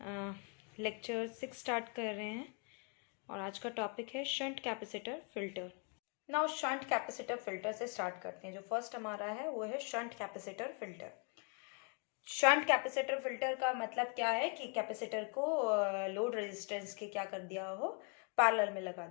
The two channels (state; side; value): quieter; right; 37.3 dB